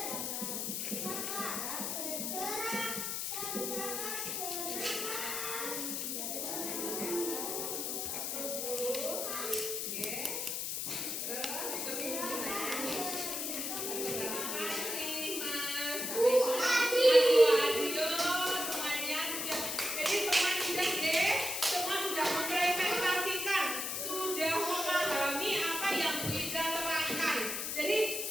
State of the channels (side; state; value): left; noise; hiss, 2 dB below the sound